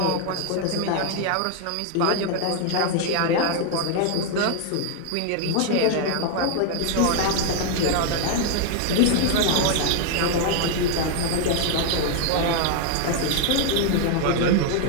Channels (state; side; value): different; both; correlation 0.00